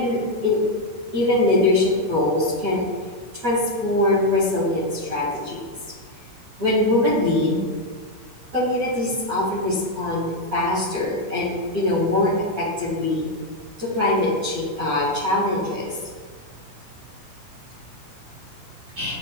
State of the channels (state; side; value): late; left; 11 ms